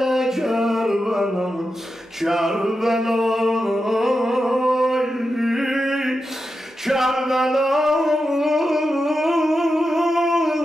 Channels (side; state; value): both; normal; correlation 0.89